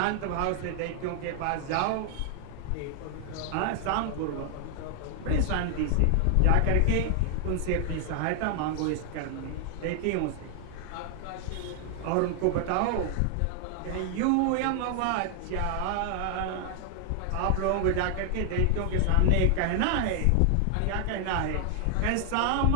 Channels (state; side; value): different; both; correlation 0.00